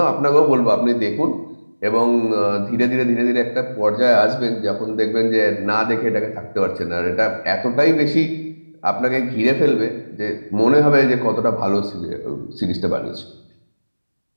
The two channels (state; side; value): inverted; both; correlation -1.00